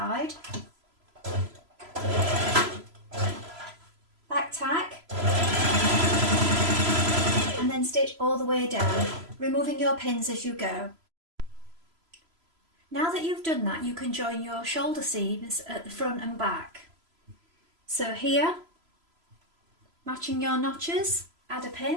Back tack. And then stitch all the way down, removing your pins as you go. Now that you've done that, you can join your shoulder seams at the front and back. So here, matching your notches, add a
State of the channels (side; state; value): left; late; 3.0 ms